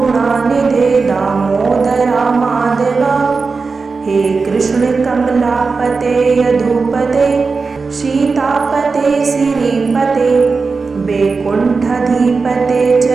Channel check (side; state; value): left; quieter; 4.5 dB